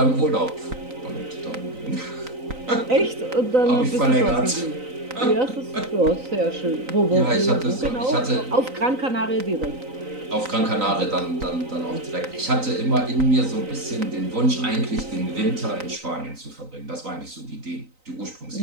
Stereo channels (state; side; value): late; left; 3.9 ms